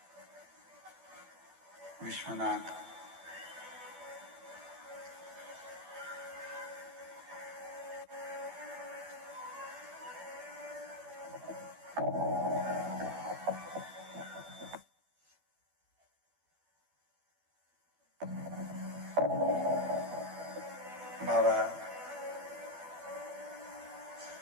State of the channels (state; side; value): late; left; 12 ms